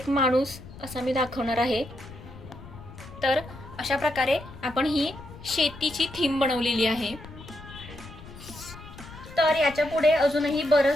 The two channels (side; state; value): left; noise; rumble, 16 dB below the sound